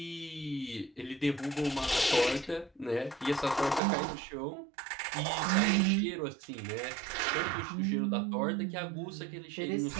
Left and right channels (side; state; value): left; drops out; at 3.8 s